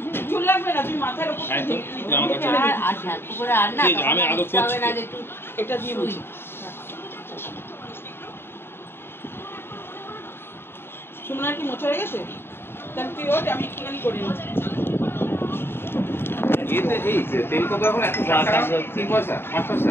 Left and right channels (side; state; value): right; late; 0.11 ms